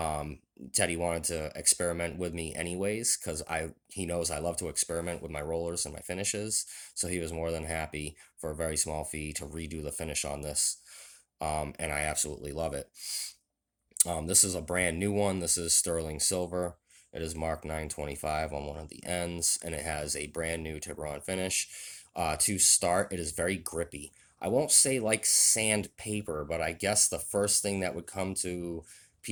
Teddy wanted to experiment with me anyways because he knows I love to experiment with my rollers and my finishes. So he was more than happy for a very small fee to redo the finish on this. And I absolutely love it. This is a brand new one. This is sterling silver. It is marked 925 on one of the ends, and it has a brand new Tiburon finish. To start, it is very grippy. I won't say like sandpaper, but I guess the first thing that would come to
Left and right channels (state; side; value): identical; both; correlation 1.00